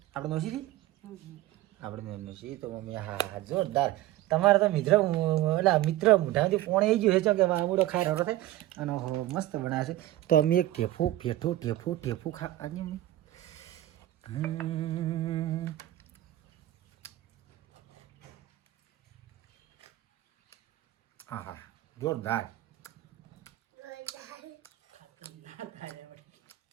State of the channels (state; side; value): quieter; left; 15.3 dB